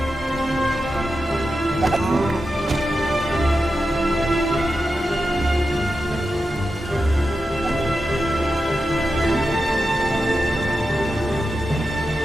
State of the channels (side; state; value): both; normal; correlation 0.90